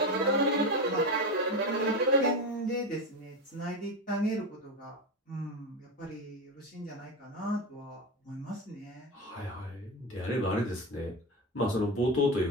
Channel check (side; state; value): both; normal; correlation 0.18